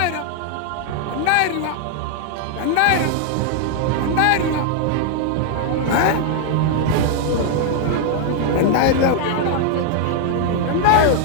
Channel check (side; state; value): both; different; correlation 0.00